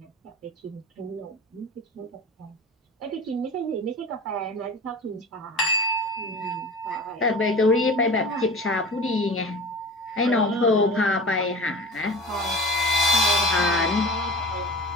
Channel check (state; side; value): normal; both; correlation 0.36